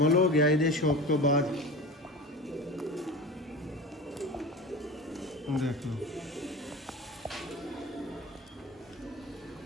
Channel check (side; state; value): both; normal; correlation 0.32